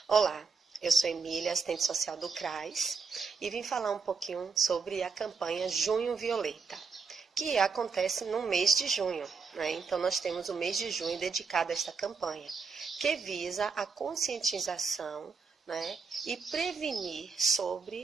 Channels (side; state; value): left; quieter; 5.1 dB